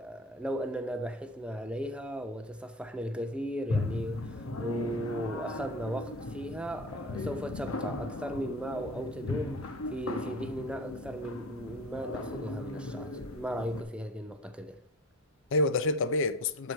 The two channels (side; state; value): both; normal; correlation 0.33